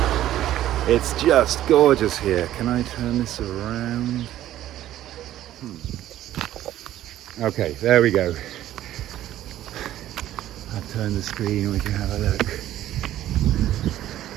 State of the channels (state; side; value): quieter; left; 13.1 dB